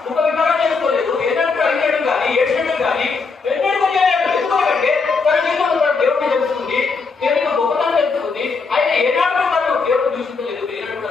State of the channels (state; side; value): quieter; right; 4.6 dB